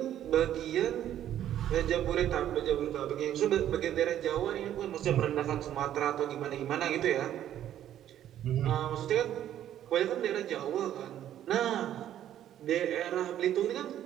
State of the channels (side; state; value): left; quieter; 11.3 dB